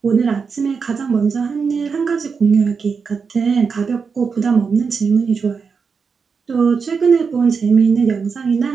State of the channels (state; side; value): quieter; left; 5.5 dB